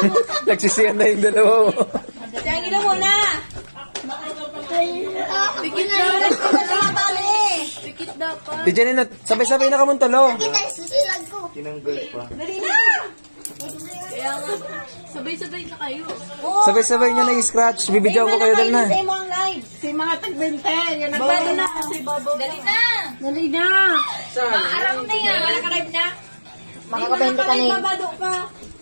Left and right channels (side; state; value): both; inverted; correlation -1.00